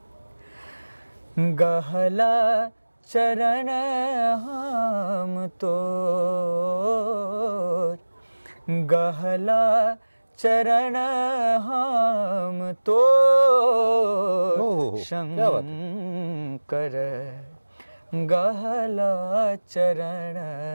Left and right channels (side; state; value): both; inverted; correlation -1.00